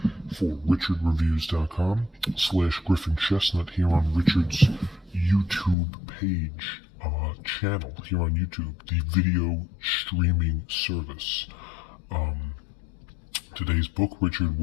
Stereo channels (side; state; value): right; drops out; at 5.8 s